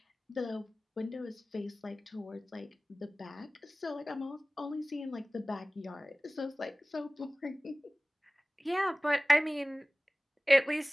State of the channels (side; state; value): both; normal; correlation 0.98